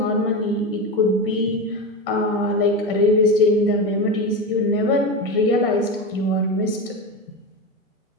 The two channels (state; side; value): normal; both; correlation 0.20